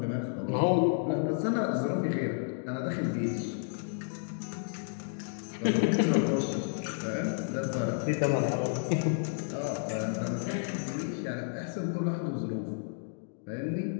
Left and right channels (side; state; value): right; silent; digital silence